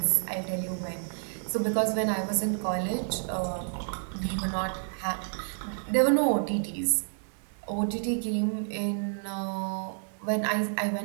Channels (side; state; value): left; silent; 58 dB below the other